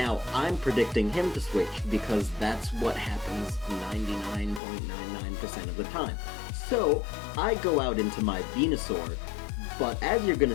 I'm predicting him to switch because that's what happens 99.99% of the time. So I go out into my Venusaur, but as you're gonna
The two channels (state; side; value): drops out; right; at 4.6 s